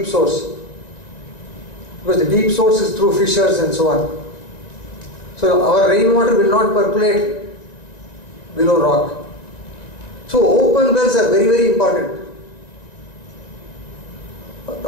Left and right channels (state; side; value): late; right; 1.9 ms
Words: source, because the deep source is through fissures and so on. So our rainwater will not percolate below rock. So open wells are very, very important.